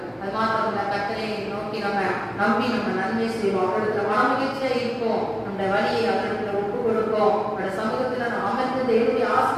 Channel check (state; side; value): identical; both; correlation 1.00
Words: அது மாத்திரம் கர்த்தரை நோக்கி நம்ம நம்பி நம்ம நன்மை செய்வோம். அவர்களுக்கு மனமகிழ்ச்சியா இருப்போம். நம்முடைய வழியை அவர்களுக்கு ஒப்பு கொடுப்போம். அவருடைய சமூகத்தில் நாம் அமர்ந்து தேவனுடைய